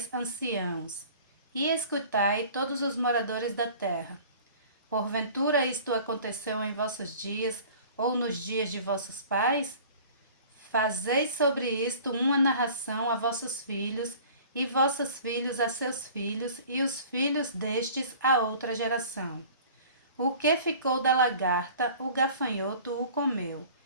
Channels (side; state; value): both; inverted; correlation -0.45